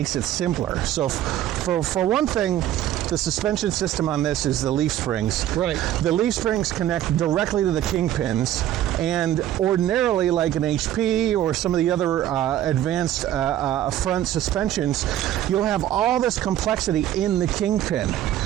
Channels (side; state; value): left; quieter; 12.3 dB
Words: it simpler. So for one thing, the suspension system on this is the leaf springs. Right. The leaf springs connect directly to the kingpins, and ordinarily, like an HP or some of the other advanced front suspensions, you'll have all this complexity in the kingpin,